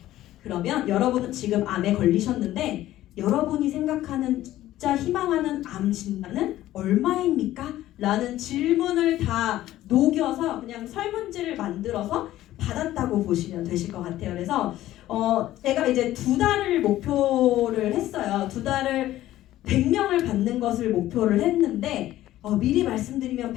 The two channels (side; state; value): right; quieter; 14.4 dB